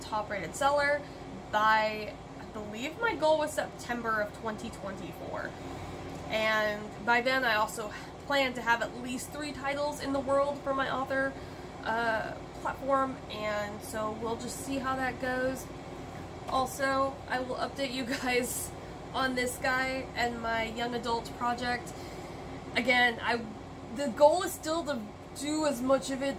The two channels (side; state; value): both; identical; correlation 1.00